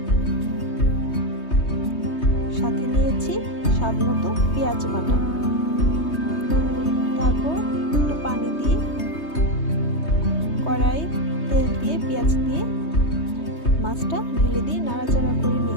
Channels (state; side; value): late; right; 3.2 ms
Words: সাথে নিয়েছি স্বাদ মতো পেঁয়াজ বাটা। তারপর একটু পানি দিয়ে কড়াই তেল দিয়ে পেঁয়াজ দিয়ে মাছটা ঢেলে দিয়ে নাড়াচাড়া করে